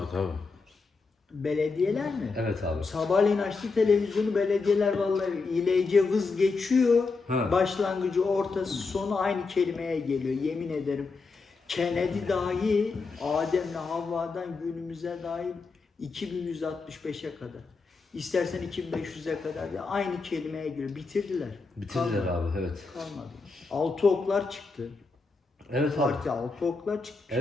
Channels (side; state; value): right; quieter; 4.2 dB